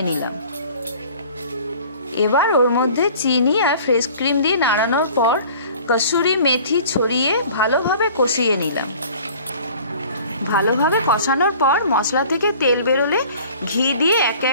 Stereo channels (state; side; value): inverted; both; correlation -0.48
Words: নিলাম। এবার ওর মধ্যে চিনি আর ফ্রেশ ক্রিম দিয়ে নাড়ানোর পর কসুরি মেথি ছড়িয়ে ভালোভাবে কষিয়ে নিলাম। ভালোভাবে কষানোর পর মশলা থেকে তেল বেরোলে ঘি দিয়ে একে